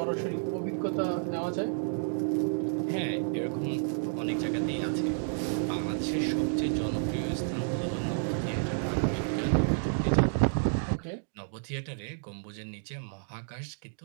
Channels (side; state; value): left; silent; digital silence